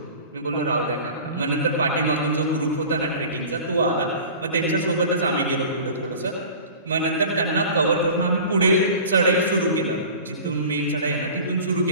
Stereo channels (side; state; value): both; inverted; correlation -0.39